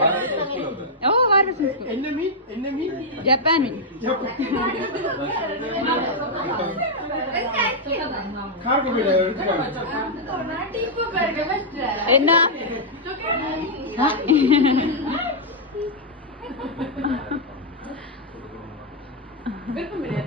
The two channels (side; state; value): both; normal; correlation -0.04